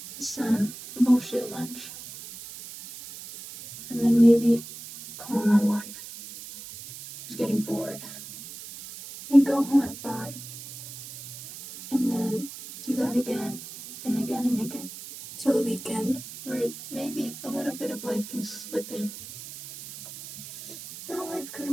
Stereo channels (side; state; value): right; noise; hiss, 13 dB below the sound